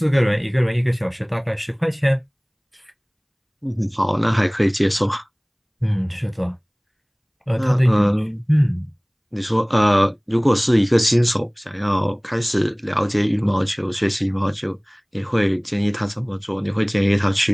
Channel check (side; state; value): both; identical; correlation 1.00